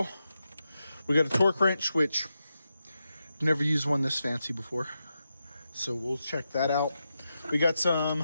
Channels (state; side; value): inverted; both; correlation -0.88